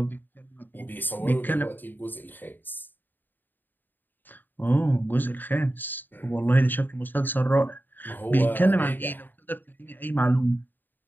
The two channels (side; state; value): right; late; 0.091 ms